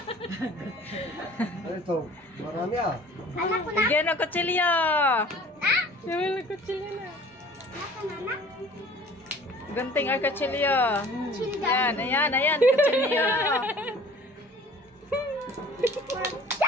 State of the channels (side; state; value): both; normal; correlation 0.48